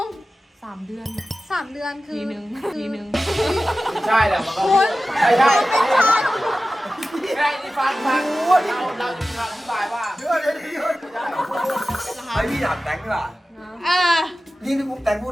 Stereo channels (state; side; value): normal; both; correlation 0.95